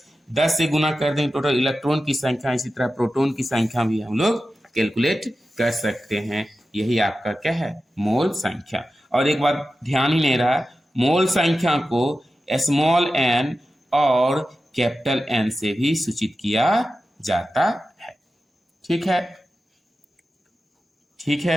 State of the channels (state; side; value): normal; both; correlation 0.93